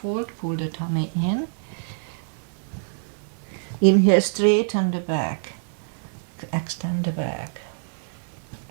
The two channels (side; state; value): left; silent; digital silence